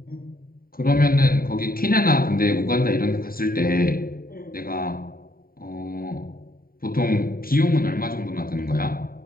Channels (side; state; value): right; late; 0.43 ms